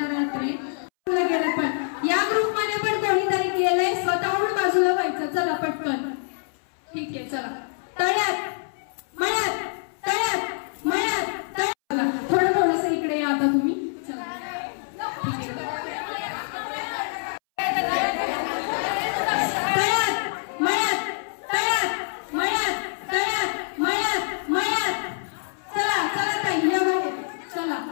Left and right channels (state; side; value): silent; right; 61 dB below the other